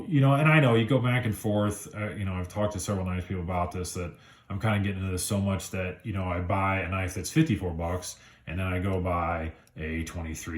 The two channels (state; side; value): identical; both; correlation 1.00